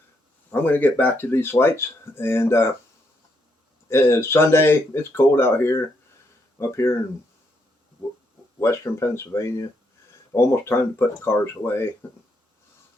going to get back to these lights, and it's Sunday. It's cold out here, up here in western Pennsylvania. Almost time to put the cars away.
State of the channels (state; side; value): normal; both; correlation 0.77